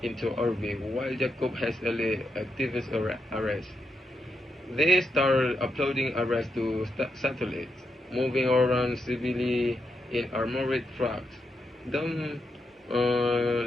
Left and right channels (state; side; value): normal; both; correlation 0.83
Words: into orbit while Jacob has Ellie activate arrest. They start uploading arrests to satellites, moving around civilly in armored trucks. Dom,